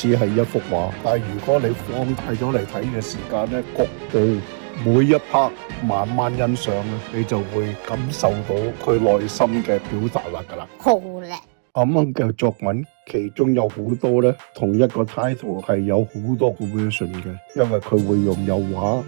係一幅畫；但係如果你放大咗嚟睇嘅時間咧，局部每一 part 慢慢欣賞咧，你就會感受到佢內心嘅表達㗎啦。好叻！阿掹嘅作品其中有好多咧，同一個 title 係有好多個 version 嘅，因為佢會用油畫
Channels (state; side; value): silent; left; 65 dB below the other